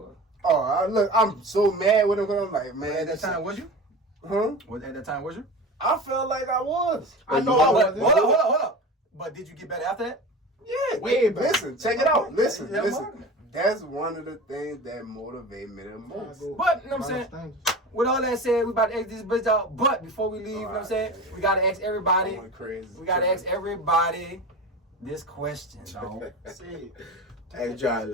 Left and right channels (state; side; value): normal; both; correlation 0.32